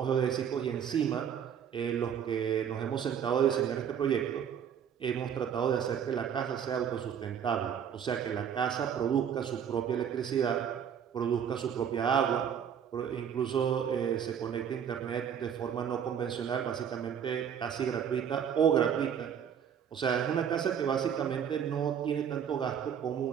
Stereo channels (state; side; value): quieter; left; 8.3 dB